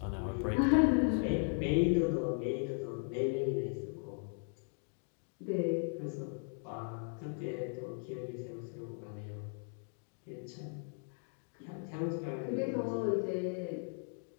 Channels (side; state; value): right; silent; 53 dB below the other